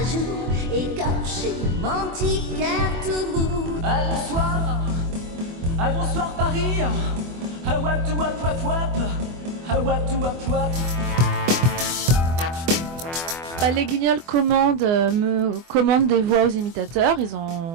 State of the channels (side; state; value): left; late; 24 ms